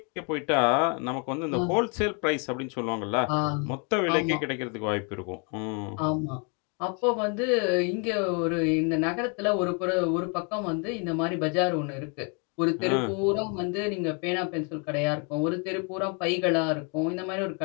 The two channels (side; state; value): right; quieter; 36.1 dB